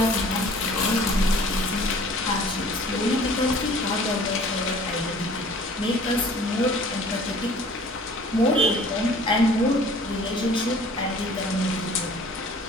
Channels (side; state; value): both; normal; correlation 0.49